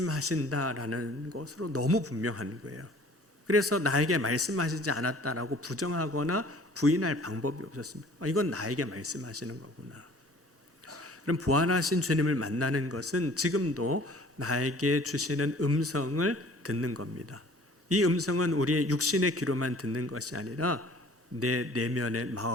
것으로 너무 분명한 거예요. 그래서 나에게 말씀하시지 않았다라고 부정하거나 부인할 방법이 없었습니다. 이건 나에게 말씀하시는 거구나. 그럼 부활하신 주님을 만나는 것은 지금도 나에게 주시는 음성을 듣는 겁니다. 이 음성은 우리의 육신의 귀로만 듣는 것이 아니라 내 내면의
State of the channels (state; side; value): normal; both; correlation 0.51